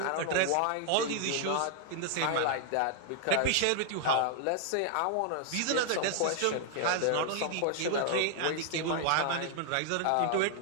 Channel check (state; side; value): different; both; correlation 0.00